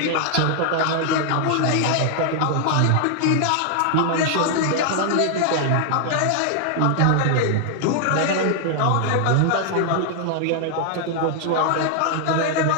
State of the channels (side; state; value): both; different; correlation 0.00